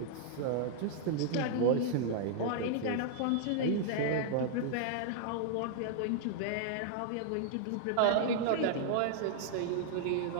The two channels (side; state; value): both; different; correlation -0.01